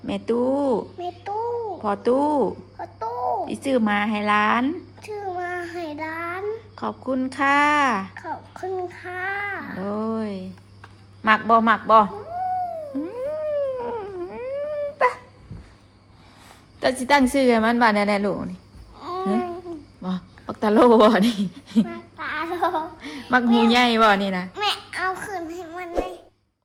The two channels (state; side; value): identical; both; correlation 1.00